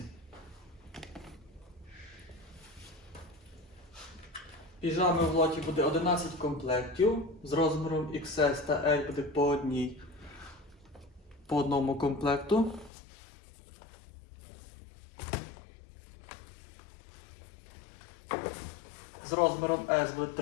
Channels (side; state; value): right; drops out; at 12.9 s